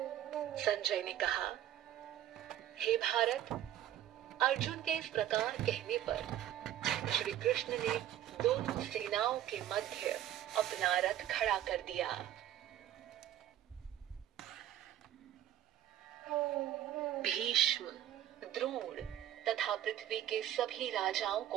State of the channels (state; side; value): quieter; left; 12.0 dB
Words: संजय ने कहा, हे भारत, अर्जुन के इस प्रकार कहने पर श्री कृष्ण ने दोनों सेनाओं के मध्य अपना रथ खड़ा कर दिया। भीष्म, द्रोण तथा पृथ्वी के सभी राजाओं